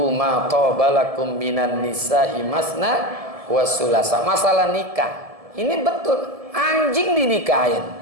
ma tabalakum minan nisa'i masna wa sulasa. Masalah nikah. Ini betul, anjing dinikahin.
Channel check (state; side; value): late; left; 1.7 ms